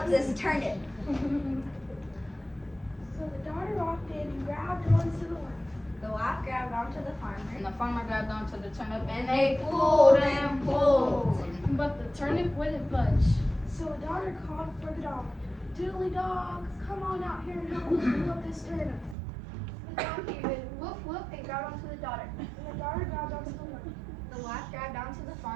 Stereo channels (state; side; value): drops out; left; at 19.2 s